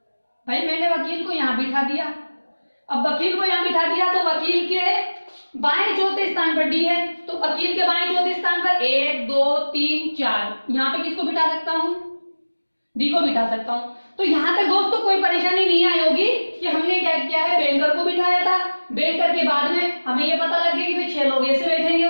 भाई, मैंने वकील को यहाँ बिठा दिया। अब वकील को यहाँ बिठा दिया तो वकील के बाएं चौथे स्थान पर डी है, तो वकील के बाएं चौथे स्थान पर 1 2 3 4 यहाँ पे किसको बिठा सकता हूँ, डी को बिठा सकता हूँ। तो यहाँ तक दोस्तों कोई परेशानी नहीं आई होगी कि हमने क्या किया है, बैंकर को बिठाया था, बैंकर के बाद में हमें ये पता लग गया कि भाई 6 लोग ऐसे बैठेंगे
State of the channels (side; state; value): both; inverted; correlation -1.00